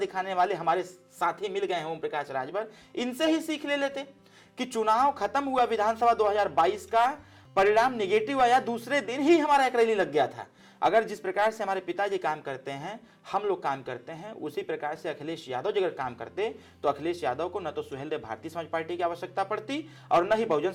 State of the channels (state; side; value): identical; both; correlation 1.00